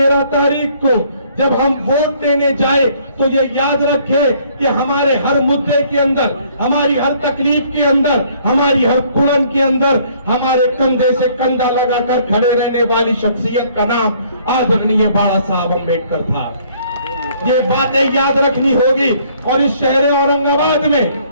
तारीख को जब हम वोट देने जाए तो ये याद रखें कि हमारे हर मुद्दे के अंदर, हमारी हर तकलीफ के अंदर, हमारी हर कुड़न के अंदर हमारे कंधे से कंधा लगाकर खड़े रहने वाली शख्सियत का नाम आदरणीय बाला साहब अंबेडकर था. ये बातें याद रखनी होगी. और इस शहर औरंगाबाद में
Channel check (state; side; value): inverted; both; correlation -0.61